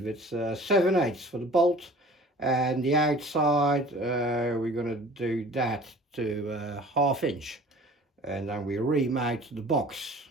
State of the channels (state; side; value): normal; both; correlation 0.46